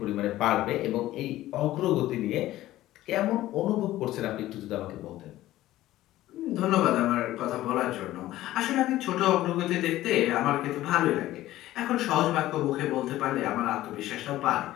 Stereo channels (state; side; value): quieter; right; 15.3 dB